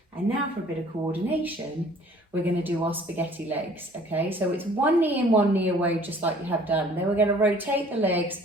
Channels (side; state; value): both; normal; correlation 0.53